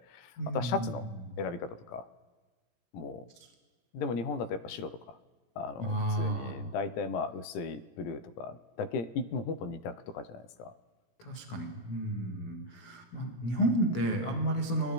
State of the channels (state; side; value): late; right; 17 ms